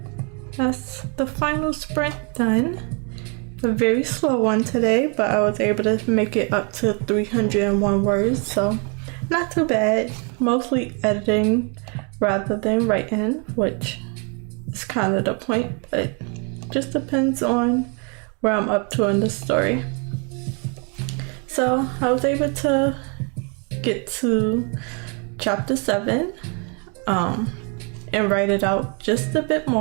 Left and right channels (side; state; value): left; quieter; 36.4 dB